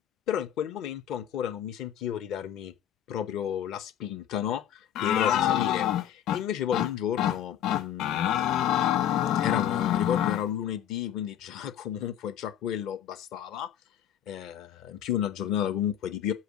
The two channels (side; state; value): right; quieter; 10.4 dB